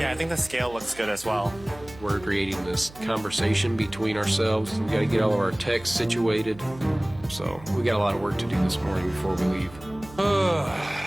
I think the scale looks good as well. We're creating this conversation between ourselves. We gotta get all of our text situated. So, we got a lot of work to do this morning before we leave.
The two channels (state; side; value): noise; right; hum, 19 dB below the sound